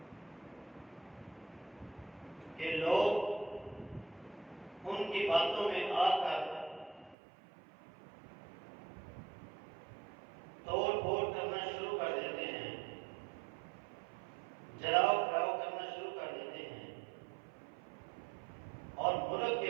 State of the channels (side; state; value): left; drops out; at 7.2 s